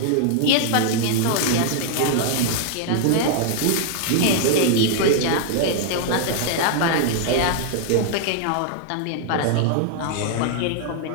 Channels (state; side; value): different; both; correlation -0.01